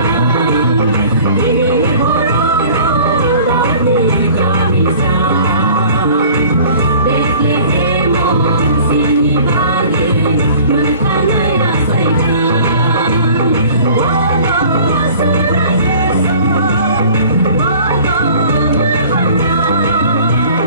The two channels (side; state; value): both; inverted; correlation -0.48